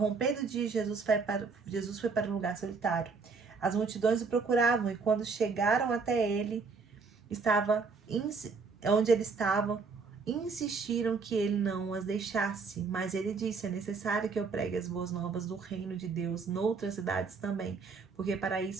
do dia, Jesus foi para um lugar solitário. As multidões o procuravam e quando chegaram até ele, onde ele estava, insistiram que ele não as deixasse. Mas ele disse: é necessário que eu pregue as boas novas do reino de Deus noutras cidades também, porque para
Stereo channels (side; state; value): left; quieter; 4.8 dB